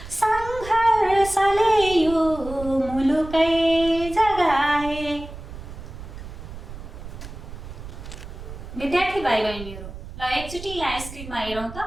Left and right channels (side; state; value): right; noise; rumble, 12 dB below the sound